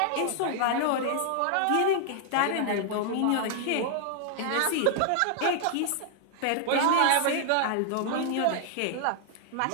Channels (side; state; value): both; different; correlation 0.00